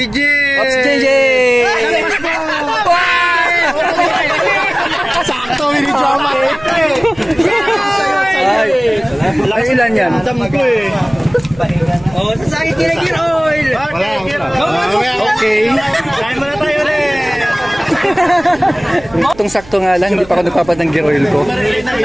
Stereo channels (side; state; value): right; noise; hum, 21 dB below the sound